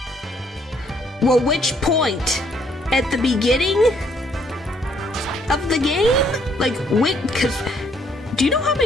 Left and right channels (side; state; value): both; normal; correlation 0.67